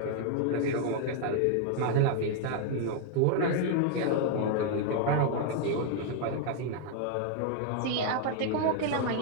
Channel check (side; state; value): both; different; correlation 0.00